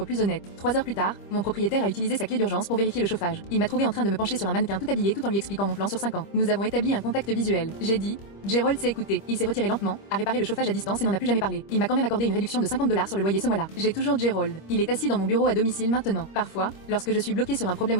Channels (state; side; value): late; right; 25 ms